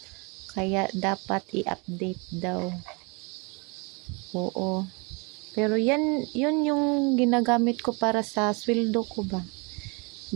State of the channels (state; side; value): quieter; left; 30.9 dB